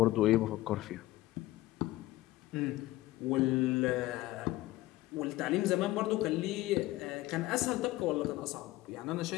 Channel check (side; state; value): right; quieter; 17.3 dB